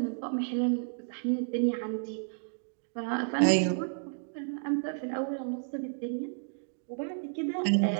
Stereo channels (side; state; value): left; silent; digital silence